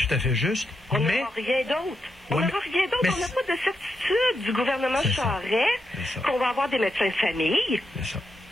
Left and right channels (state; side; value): normal; both; correlation 0.84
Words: à fait juste. On n'aura rien d'autre. On n'a rien d'autre. On n'a pas de certitude du gouvernement Charest qu'on va avoir des médecins de famille. C'est ça.